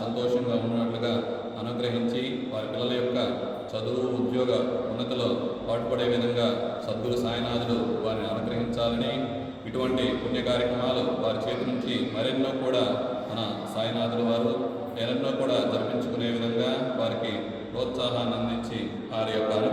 సంతోషంగా ఉన్నట్లుగా అనుగ్రహించి వారి పిల్లల యొక్క చదువు ఉద్యోగ ఉన్నతిలో పాటుపడే విధంగా సద్గురు సాయినాథుడు వారిని అనుగ్రహించాలని, ఇటువంటి పుణ్య కార్యక్రమాలు వారి చేతి నుంచి మరెన్నో కూడా మన సాయినాథుడు వారు ఎన్నో కూడా జరిపించుకునే విధంగా వారికి ప్రోత్సాహాన్ని అందించి వారి యొక్క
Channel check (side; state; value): both; identical; correlation 1.00